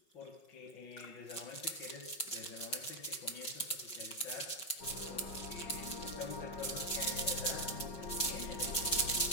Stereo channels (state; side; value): late; right; 5.5 ms